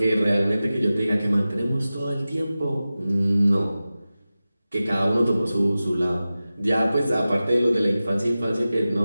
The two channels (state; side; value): inverted; both; correlation -0.95